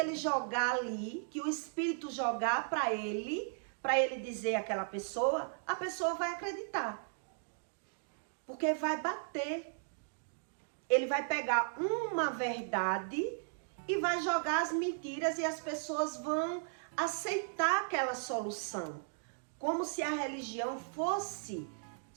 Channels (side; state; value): left; silent; digital silence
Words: jogar ali, que o espírito jogar para ele dizer àquela pessoa, a pessoa vai acreditar. Porque vai bater. Ele vai pegar uma verdade e vai jogar as mentiras e as pessoas vão aceitar aquela solução. Como se a religião fosse